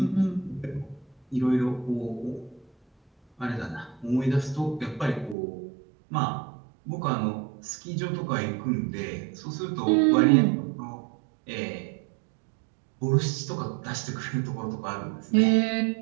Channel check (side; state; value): left; drops out; at 5.4 s